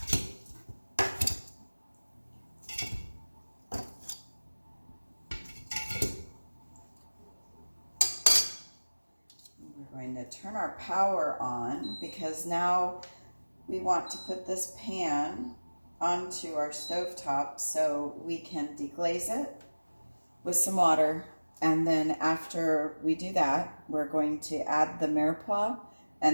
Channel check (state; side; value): inverted; both; correlation -1.00